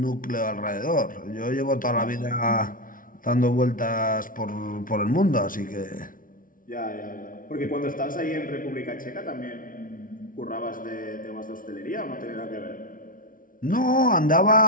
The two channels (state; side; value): late; right; 0.39 ms